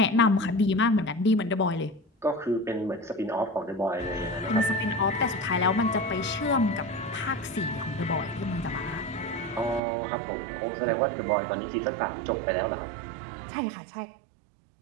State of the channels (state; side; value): drops out; left; at 9.8 s